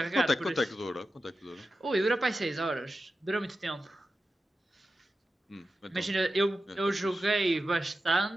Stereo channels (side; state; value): both; normal; correlation 0.92